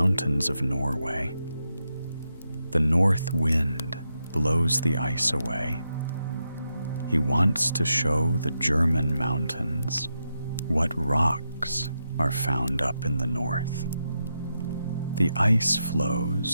of Norway. The north wind blows the ice away. He wants to show the German mountains what rocks are found up in the north. The ice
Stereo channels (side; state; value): both; inverted; correlation -0.85